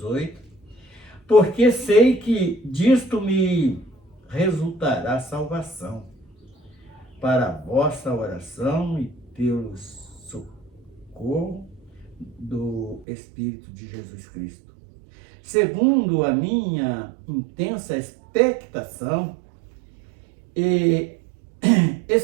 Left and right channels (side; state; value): left; drops out; at 13.1 s